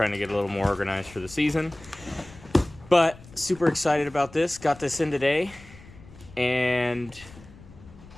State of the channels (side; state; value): left; noise; rumble, 21 dB below the sound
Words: to get a little more organized for the season. But super excited about this, got this in today, and